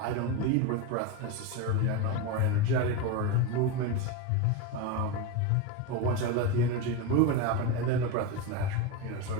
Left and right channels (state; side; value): different; both; correlation 0.06